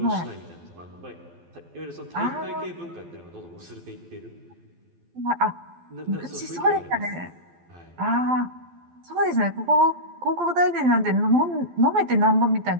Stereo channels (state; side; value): late; left; 12 ms